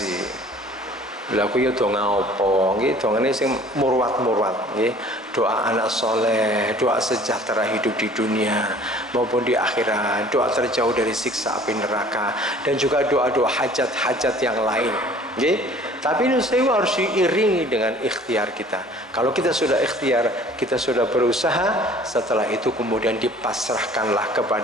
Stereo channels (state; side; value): normal; both; correlation 0.50